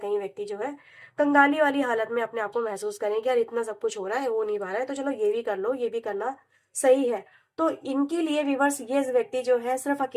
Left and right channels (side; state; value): both; identical; correlation 1.00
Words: व्यक्ति जो है कंगाली वाली हालत में अपने आप को महसूस करें कि यार इतना सब कुछ हो रहा है, हो नहीं पा रहा है, तो चलो ये भी कर लो, ये भी करना सही है। तो इनके लिए व्यूवर्स ये व्यक्ति जो है सिर्फ